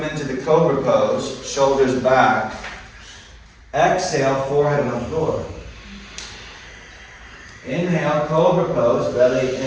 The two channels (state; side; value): identical; both; correlation 1.00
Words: into the cobra pose, shoulders back. Exhale, forehead on the floor. Inhale, cobra pose, belly